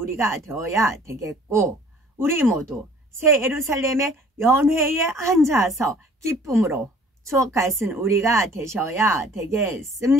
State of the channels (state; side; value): normal; both; correlation 0.53